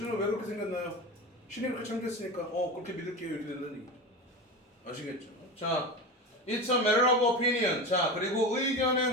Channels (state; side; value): normal; both; correlation 0.24